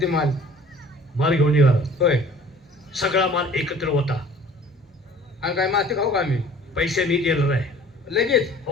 ते माल माल घेऊन निघाला. होय सगळा माल एकत्र होता. आणि काय माती खाऊ का आम्ही पैसे मी देणार आहे. लगेच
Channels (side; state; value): both; normal; correlation 0.49